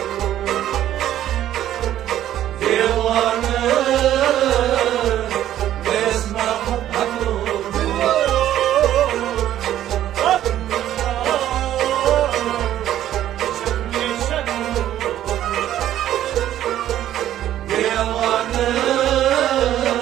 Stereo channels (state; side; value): quieter; left; 12.1 dB